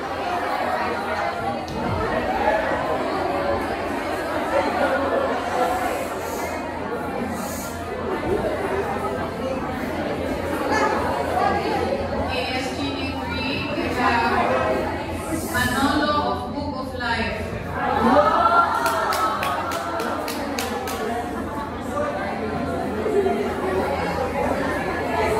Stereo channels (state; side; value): identical; both; correlation 1.00